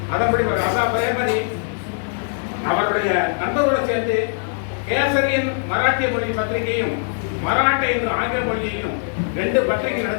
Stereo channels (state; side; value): silent; right; 65 dB below the other